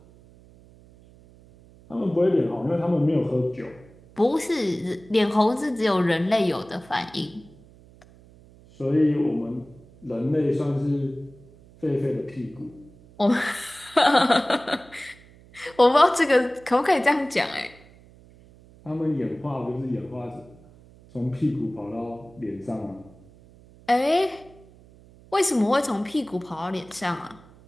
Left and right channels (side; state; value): right; noise; hum, 25 dB below the sound